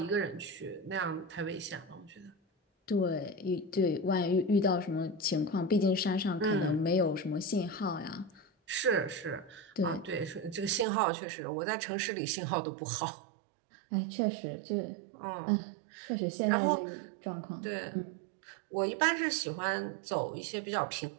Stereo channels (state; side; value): drops out; left; at 10.9 s